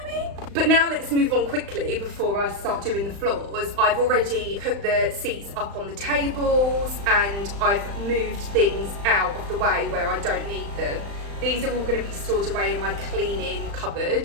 I mean? But now let's move on quickly before I start doing the floors. I've already put the seats up on the tables, and I've moved things out of the way where I don't need them. These are all going to be stored away in my cleaning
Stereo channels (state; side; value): late; left; 35 ms